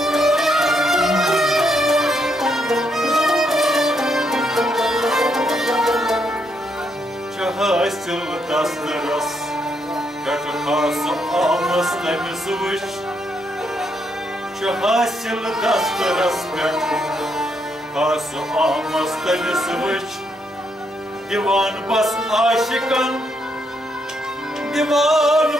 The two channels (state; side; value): normal; both; correlation 0.77